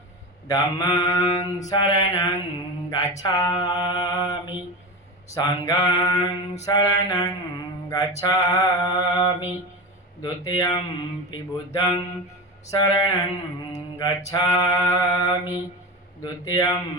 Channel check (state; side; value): normal; both; correlation 0.23